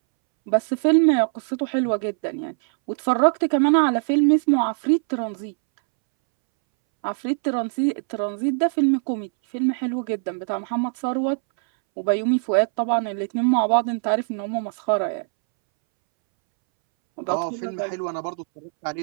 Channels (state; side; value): silent; left; 64 dB below the other